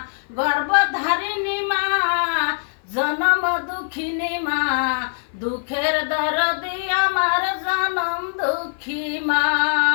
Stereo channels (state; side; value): silent; right; 57 dB below the other